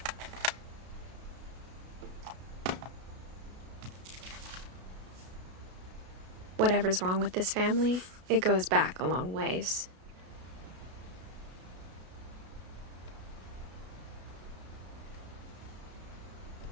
Whatever's wrong with this family, it goes back a long ways.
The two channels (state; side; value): late; left; 33 ms